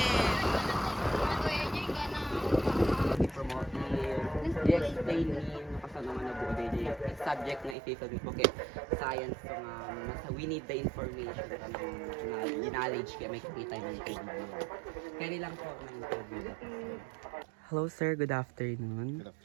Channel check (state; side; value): drops out; left; at 7.8 s